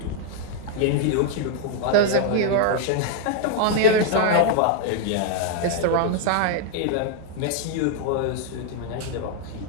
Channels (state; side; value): different; both; correlation 0.00